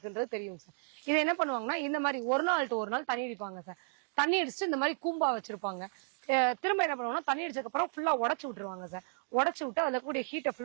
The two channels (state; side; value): silent; left; 56 dB below the other